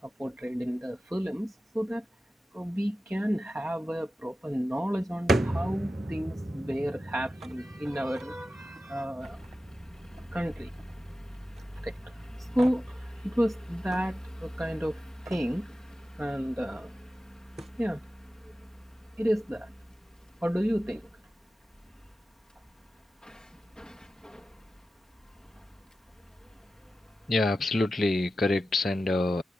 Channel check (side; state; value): both; normal; correlation 0.93